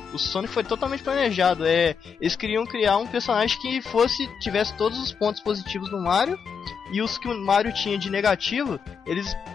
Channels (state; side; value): quieter; right; 6.4 dB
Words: O Sonic foi totalmente planejado. Eles queriam criar um personagem que tivesse todos os pontos positivos do Mario, e os que o Mario tinha de negativo, eles